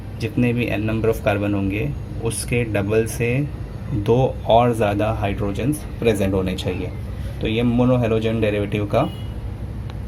जितने भी n नंबर ऑफ कार्बन होंगे, उसके डबल से 2 और ज़्यादा हाइड्रोजन्स प्रेजेंट होने चाहिए। तो ये मोनो हेलोजन डेरिवेटिव का,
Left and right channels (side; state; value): both; identical; correlation 1.00